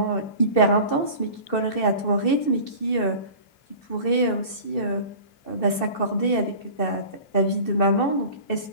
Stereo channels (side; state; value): right; late; 2.7 ms